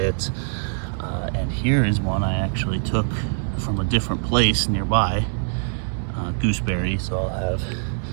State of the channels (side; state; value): left; silent; 63 dB below the other